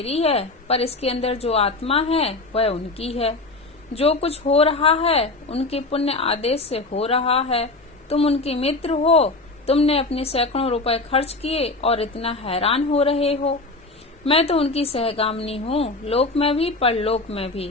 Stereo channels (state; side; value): quieter; right; 3.2 dB